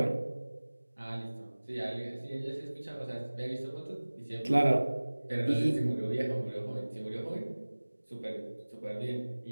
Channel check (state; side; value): inverted; both; correlation -1.00